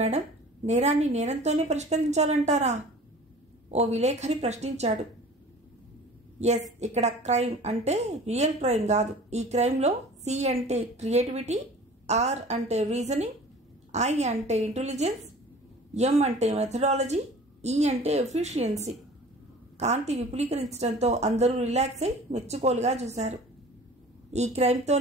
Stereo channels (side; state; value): both; normal; correlation 0.44